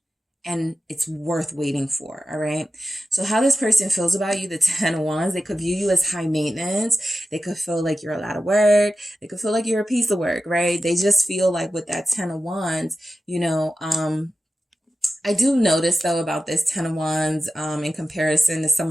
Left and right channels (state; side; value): normal; both; correlation 0.94